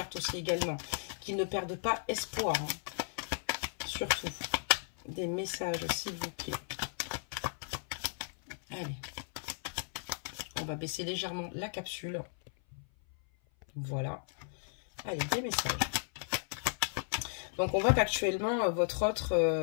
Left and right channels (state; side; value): silent; right; 54 dB below the other